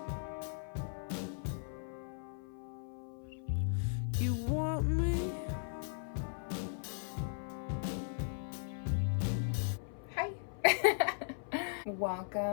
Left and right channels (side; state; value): right; silent; 53 dB below the other